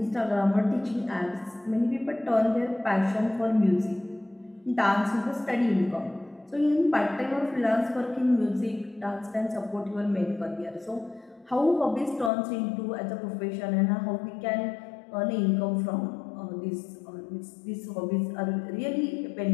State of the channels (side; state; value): right; drops out; at 12.3 s